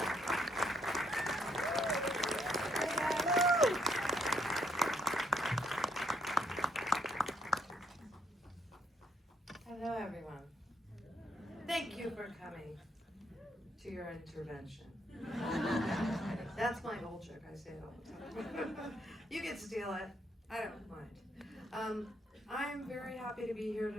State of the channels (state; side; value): normal; both; correlation 0.72